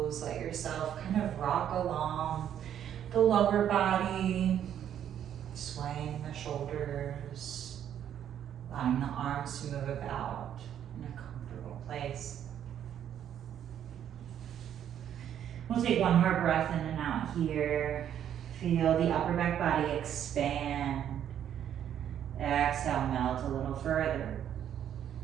Let yourself kind of rock along the lower body, swaying the shoulders, allowing the arms to move about in a comfortable place. We'll take one more breath in and out here. Feel the upper back body expand. Exhale, melt a little further.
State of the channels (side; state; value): left; quieter; 9.9 dB